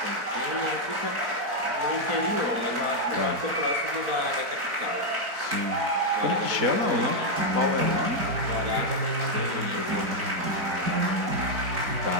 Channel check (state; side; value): late; left; 4.6 ms